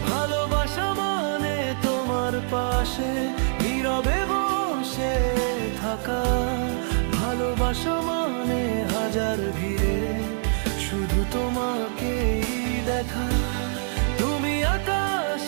ভালোবাসা মানে তোমার পাশে নীরবে বসে থাকা। ভালোবাসা মানে হাজার ভিড়ে শুধু তোমাকেই দেখা। তুমি আকাশ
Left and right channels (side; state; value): left; silent; digital silence